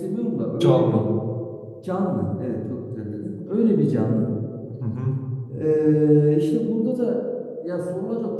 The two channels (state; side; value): identical; both; correlation 1.00